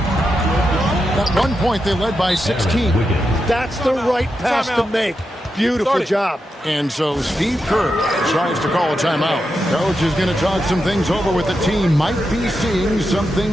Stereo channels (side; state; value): both; normal; correlation 0.87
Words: one point, they led by 16. That's the right pass to make. Beautiful job. And so Steve Kerr tries to call a timeout. Coach is going to talk some things over with the team. Might be seeing